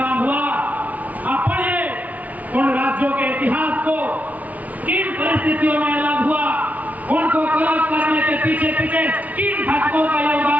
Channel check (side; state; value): left; late; 0.072 ms